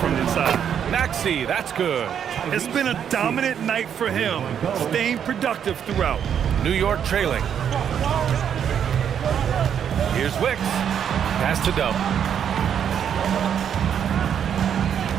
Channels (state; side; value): quieter; left; 8.5 dB